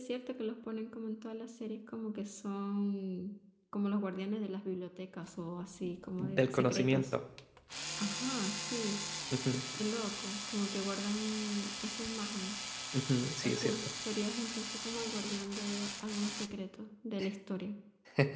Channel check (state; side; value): identical; both; correlation 1.00